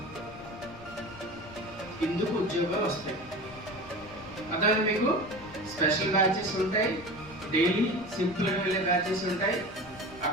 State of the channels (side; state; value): left; noise; rumble, 20 dB below the sound